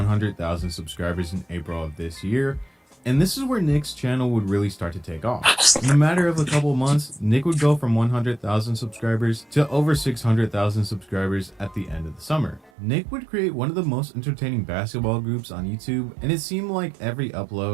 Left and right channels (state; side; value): drops out; left; at 12.7 s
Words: subscribers in April of this year, and this is where Nick's channel would really start to take off. In a matter of a couple months, Nick would go from 100,000 subscribers to over 600,000 subscribers at the end of the summer. Nick would create one of the most entertaining basketball groups on YouTube, and it seemed like every